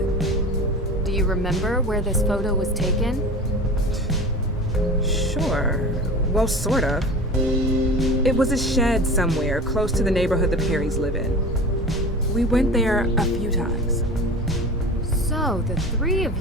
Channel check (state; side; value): normal; both; correlation 0.35